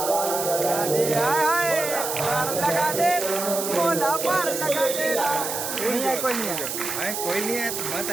पार लगा दे, पार लगा दे, मोला पार लगा दे। नहीं है, कोई नहीं है, कोई नहीं है।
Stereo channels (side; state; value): right; noise; hiss, 4 dB below the sound